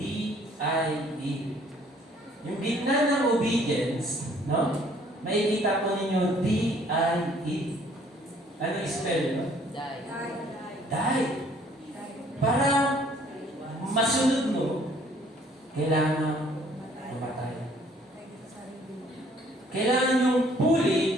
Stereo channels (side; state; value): both; normal; correlation 0.60